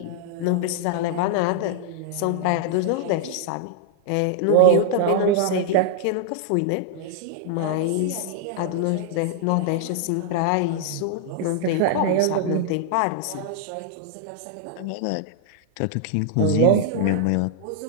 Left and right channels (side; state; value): both; different; correlation -0.01